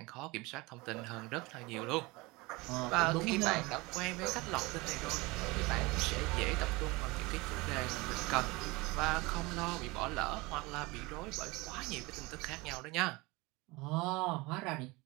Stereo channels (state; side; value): quieter; left; 23.8 dB